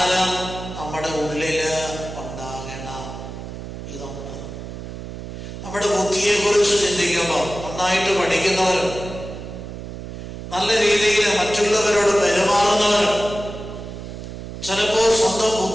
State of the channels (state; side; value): noise; right; hum, 10 dB below the sound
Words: നമ്മുടെ ഉള്ളില് ഉണ്ടാകണം. ഇതുണ്ട്. നമ്മുടെ ബുദ്ധിയെ കുറിച്ച് ചിന്തിക്കുമ്പോൾ നന്നായിട്ട് പഠിക്കുന്നവരുണ്ട്, നല്ല രീതിയിൽ മറ്റുള്ളവരോട് പെരുമാറുന്നവരുണ്ട്, ചിലപ്പോൾ സ്വന്തം